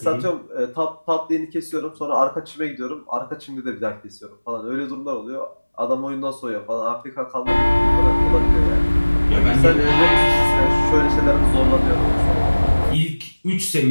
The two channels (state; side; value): inverted; both; correlation -1.00